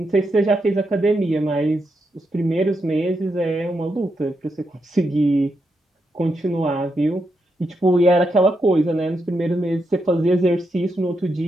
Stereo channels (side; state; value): both; normal; correlation 0.83